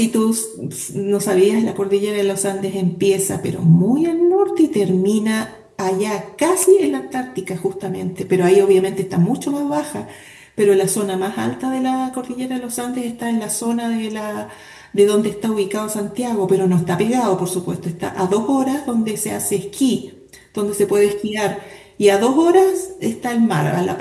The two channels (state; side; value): identical; both; correlation 1.00